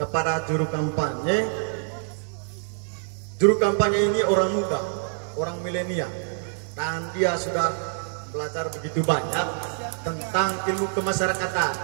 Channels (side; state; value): left; silent; digital silence